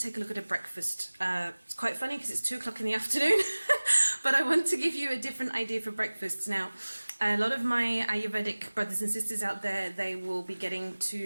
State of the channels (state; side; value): inverted; both; correlation -1.00